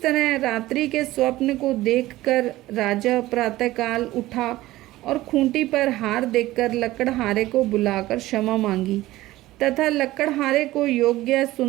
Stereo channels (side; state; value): left; quieter; 16.9 dB